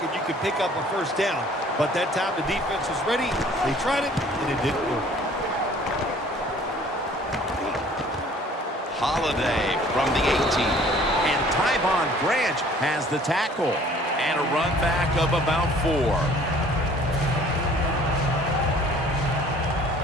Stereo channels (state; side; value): normal; both; correlation 0.53